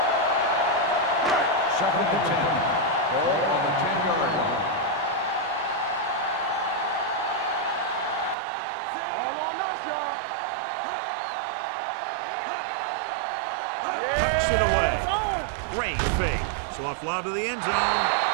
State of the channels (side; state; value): left; drops out; at 8.3 s